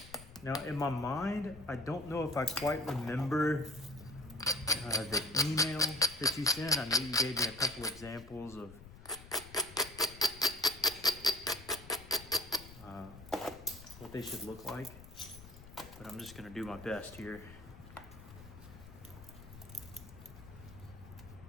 Now, in my mind, I don't know if I quite remember the email that you sent. I know you gave me a couple examples of what they should look like, but I'm just gonna do my best here.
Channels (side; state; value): left; noise; rumble, 17 dB below the sound